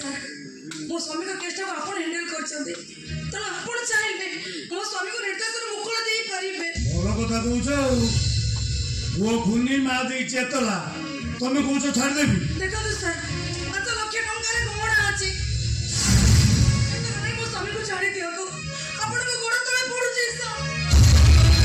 मो स्वामी का केस को आपण हैंडल करछंती त आपण चाहेबे मो स्वामी को निर्दोष मुकुल देई परिबे बोलो कथा कहउछ वो खुनी मा दे चेतला तुम कहउछ छाड़ देबी देखो तो सर 5 लाख टंका रे गोड़ा अछि मो स्वामी को छाड़ी दियो तो आपण को गोड़ तले पड़ु छी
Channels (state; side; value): identical; both; correlation 1.00